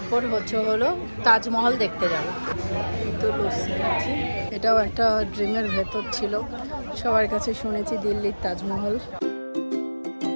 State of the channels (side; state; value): both; inverted; correlation -1.00